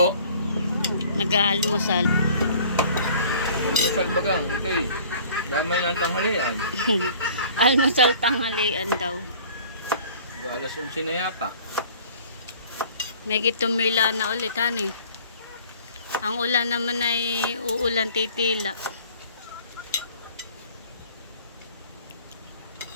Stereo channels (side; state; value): both; inverted; correlation -0.50